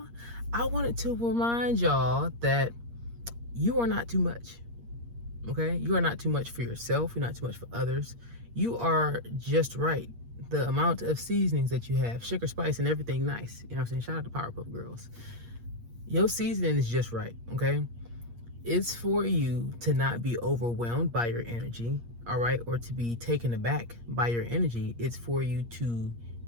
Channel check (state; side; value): late; left; 8.5 ms